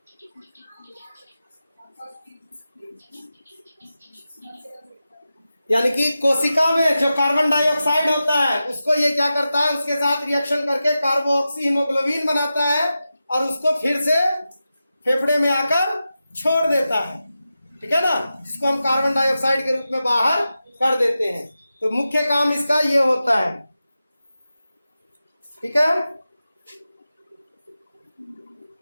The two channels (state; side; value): inverted; both; correlation -0.92